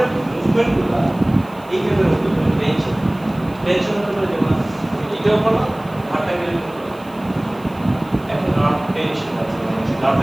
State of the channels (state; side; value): noise; right; hiss, 27 dB below the sound